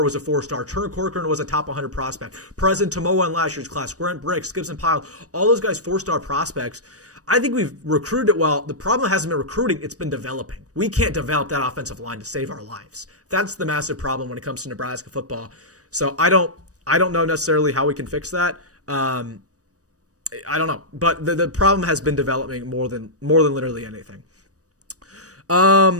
was a 4-star. Turner Corcoran was a top 100 prospect. President Tomoa in last year's class. Grant Bricks, Gibson Pyle, all those guys 4-star prospects. I think we've recruited it well. The problem hasn't been recruiting, it's been developing. We can't develop that offensive line to save our lives. That's the massive problem when it comes to Nebraska football. So I don't know necessarily how we can fix that. I don't know, but the problem has been developing more than literally anything.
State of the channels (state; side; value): late; left; 0.66 ms